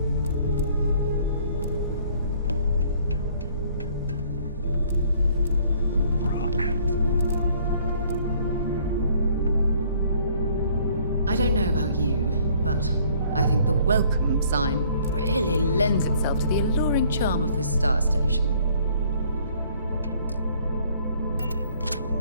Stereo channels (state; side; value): inverted; both; correlation -0.60